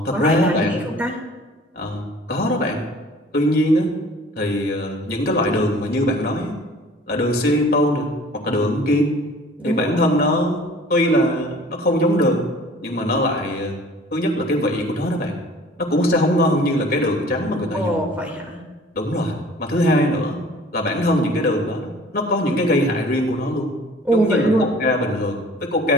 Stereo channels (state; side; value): normal; both; correlation 0.49